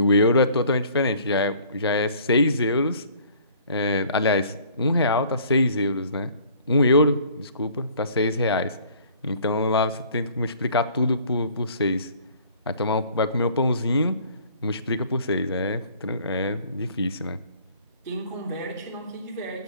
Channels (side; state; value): both; inverted; correlation -0.54